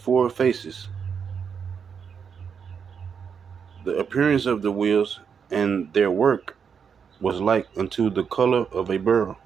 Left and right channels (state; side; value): quieter; left; 6.7 dB